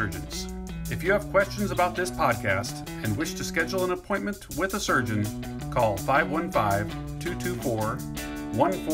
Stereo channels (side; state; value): both; identical; correlation 1.00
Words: If you have questions about this podcast and wish to schedule an appointment with a surgeon, call